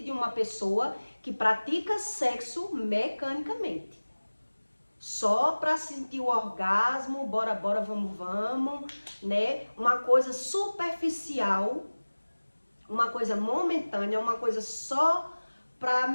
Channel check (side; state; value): both; inverted; correlation -1.00